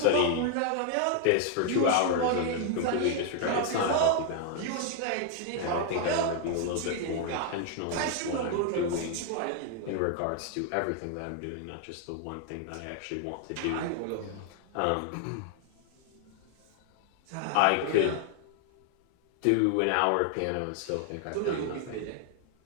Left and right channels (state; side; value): different; both; correlation 0.00